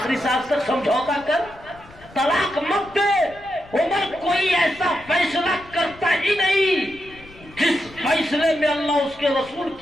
سانس تک سمجھوتا کر، طلاق مت دے۔ عمر کوئی ایسا فیصلہ کرتا ہی نہیں جس فیصلے میں اللہ اس کے رسول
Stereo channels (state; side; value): noise; left; rumble, 22 dB below the sound